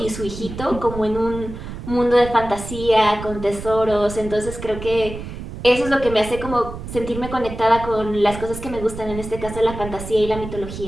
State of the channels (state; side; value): noise; right; rumble, 10 dB below the sound